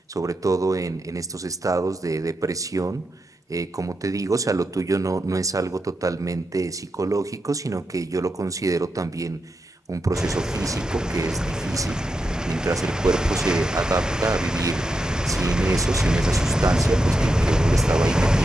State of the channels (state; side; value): normal; both; correlation 0.87